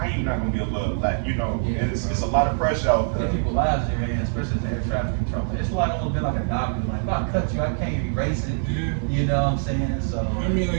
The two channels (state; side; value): silent; left; digital silence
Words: you not gonna be able to, like, it's a lot of pressure out there. People lives there, man, especially as air traffic control. It's like almost been like a doctor. Like, if I cut you, I can't erase it. Yeah. You know what I'm saying? So I mean,